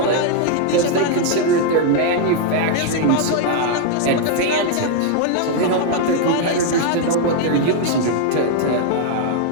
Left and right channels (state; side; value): different; both; correlation 0.00